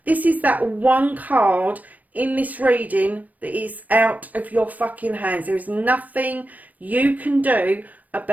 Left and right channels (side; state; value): left; late; 0.077 ms